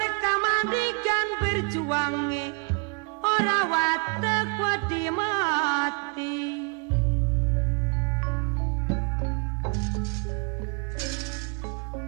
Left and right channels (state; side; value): quieter; left; 32.1 dB